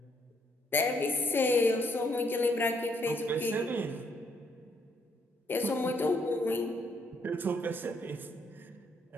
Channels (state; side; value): normal; both; correlation 0.72